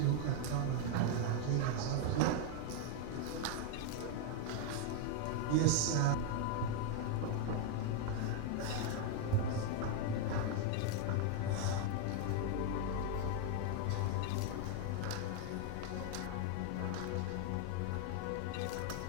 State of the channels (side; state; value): both; different; correlation 0.01